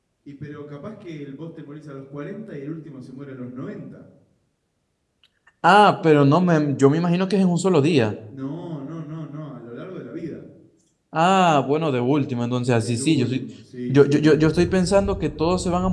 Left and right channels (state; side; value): identical; both; correlation 1.00